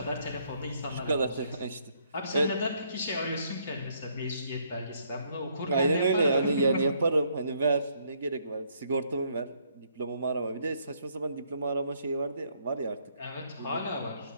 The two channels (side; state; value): both; inverted; correlation -0.69